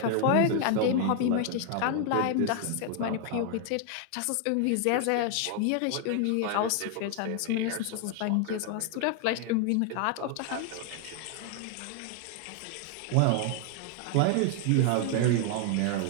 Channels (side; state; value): both; different; correlation 0.00